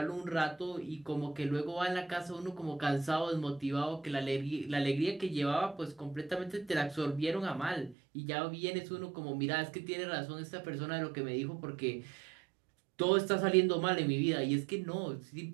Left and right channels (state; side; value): drops out; left; at 8.0 s